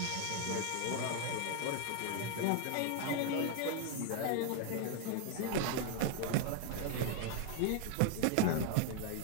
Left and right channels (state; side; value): different; both; correlation 0.00